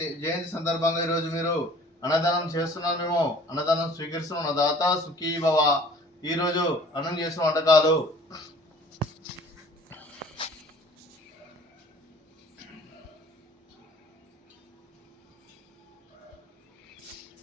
జయంతి సందర్భంగా ఈరోజు మీరు అన్నదానం చేస్తున్నాం. మేము అన్నదానం స్వీకరిస్తున్నాం. దాత సుఖీ భవ. ఈరోజు అన్నం చేసిన వంటకాలు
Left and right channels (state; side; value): normal; both; correlation 0.51